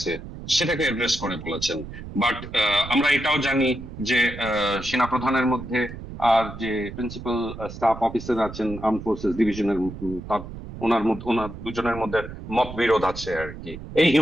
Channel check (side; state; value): right; noise; rumble, 11 dB below the sound